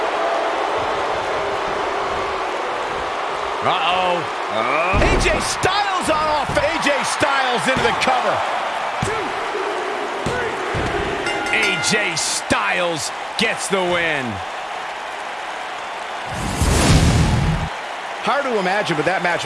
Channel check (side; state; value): both; identical; correlation 1.00